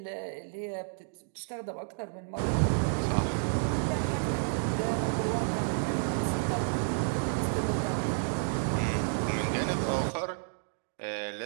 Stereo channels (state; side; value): silent; left; digital silence